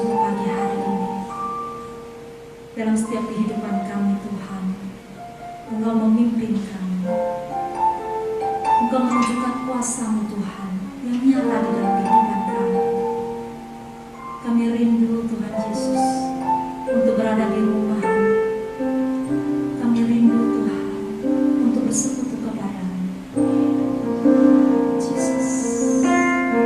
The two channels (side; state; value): both; identical; correlation 1.00